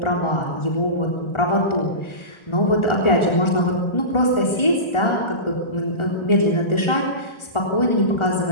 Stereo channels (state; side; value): late; right; 1.4 ms